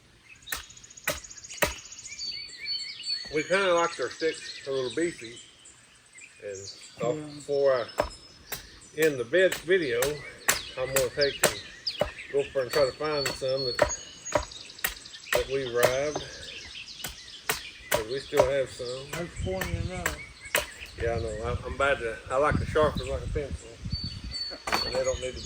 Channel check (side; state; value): both; identical; correlation 1.00